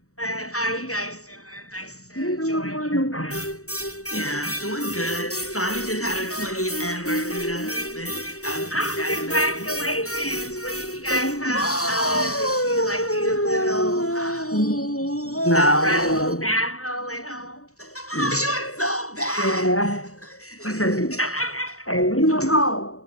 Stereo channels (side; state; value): right; late; 0.65 ms